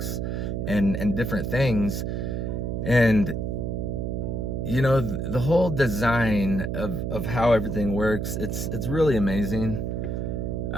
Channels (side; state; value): right; noise; hum, 2 dB below the sound